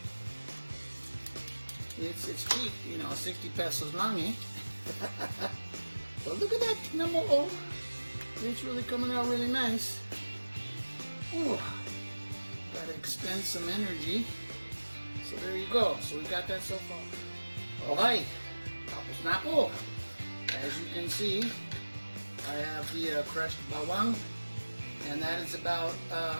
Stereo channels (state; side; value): inverted; both; correlation -1.00